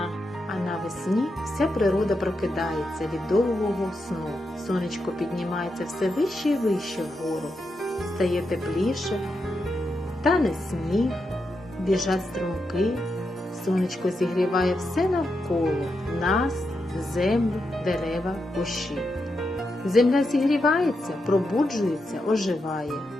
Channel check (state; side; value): normal; both; correlation 0.85